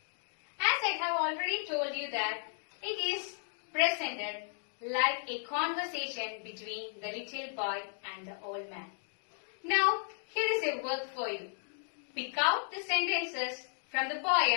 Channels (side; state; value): right; silent; digital silence